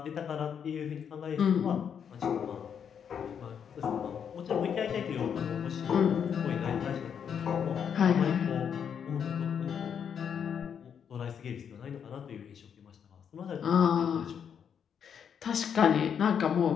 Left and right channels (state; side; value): quieter; right; 7.7 dB